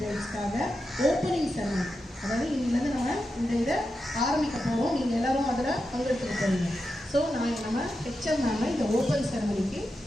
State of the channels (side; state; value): both; normal; correlation 0.89